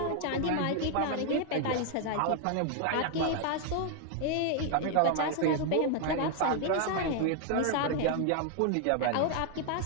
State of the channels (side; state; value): both; different; correlation 0.00